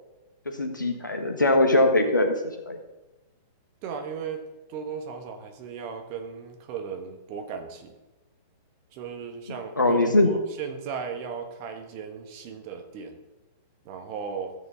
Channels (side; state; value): both; inverted; correlation -0.53